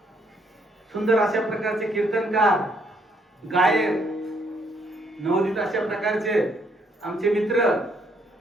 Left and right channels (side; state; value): both; normal; correlation 0.70